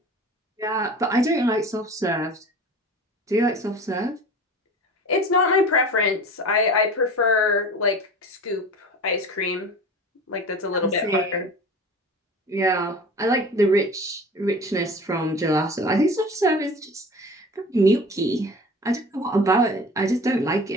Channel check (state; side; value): normal; both; correlation 0.38